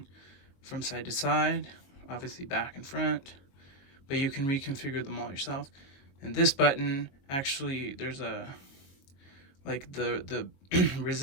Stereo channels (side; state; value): right; late; 22 ms